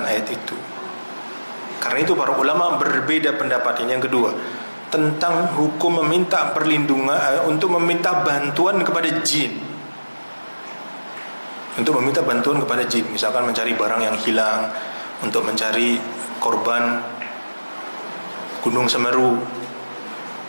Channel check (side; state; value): both; inverted; correlation -1.00